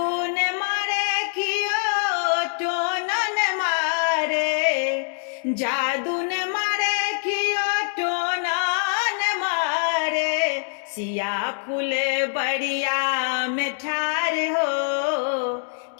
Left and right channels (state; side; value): silent; right; digital silence